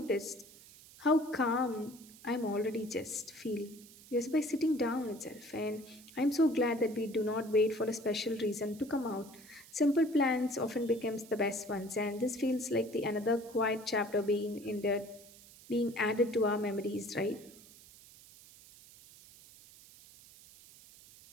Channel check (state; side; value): noise; right; hiss, 21 dB below the sound